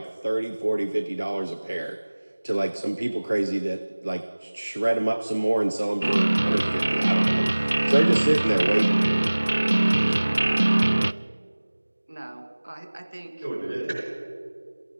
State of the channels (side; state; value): both; inverted; correlation -1.00